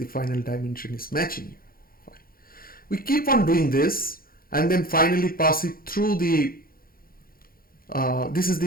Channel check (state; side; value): late; right; 0.42 ms